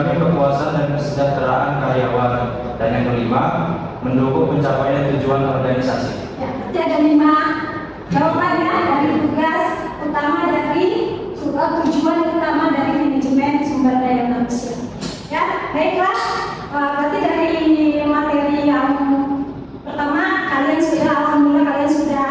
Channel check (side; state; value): both; identical; correlation 1.00